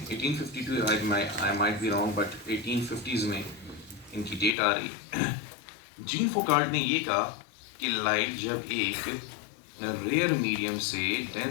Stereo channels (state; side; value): drops out; right; at 4.5 s